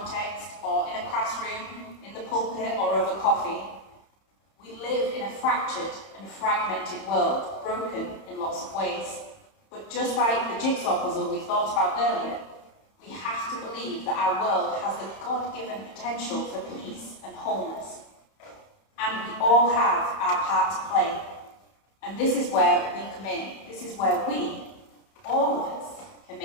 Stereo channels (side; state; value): right; late; 31 ms